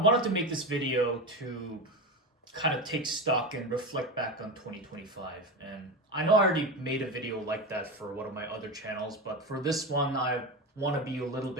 to make this video to kind of take stock and reflect back on 2025. And I know I already made a video like that for one of my other channels, but for this one I want to be a little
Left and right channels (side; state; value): both; normal; correlation 0.20